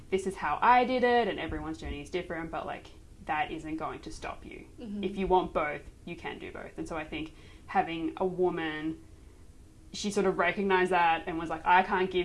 this is how I did it, and everyone's journey is different, but like that isn't going to stop you. If you want both, you can do both. And so I think having a woman, she sort of recognized that and was like, I can't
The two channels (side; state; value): both; identical; correlation 1.00